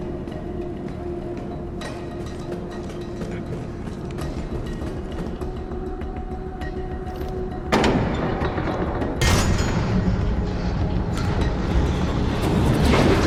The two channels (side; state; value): both; identical; correlation 1.00